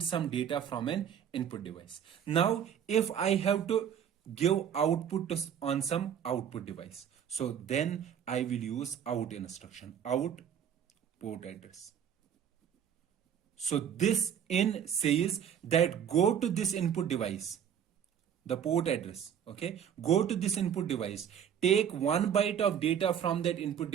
some data from an input device. Now if I have to give output on some output device, so then I will use out instruction, out port address. So this in says that go to this input device, the port address. Okay, go to this input device, take 1 byte of data from that input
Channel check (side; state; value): left; quieter; 8.7 dB